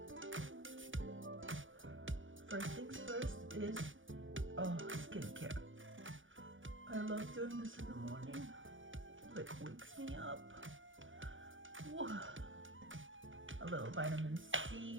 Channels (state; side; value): late; left; 0.57 ms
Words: First things first is skincare. I love doing this in the morning. It like wakes me up. Whoa. A little vitamin